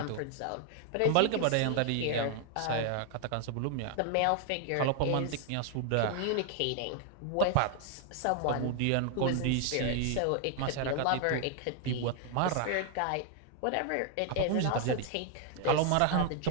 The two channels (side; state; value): both; different; correlation 0.00